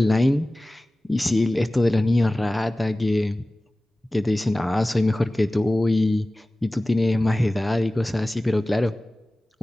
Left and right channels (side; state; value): both; normal; correlation 0.97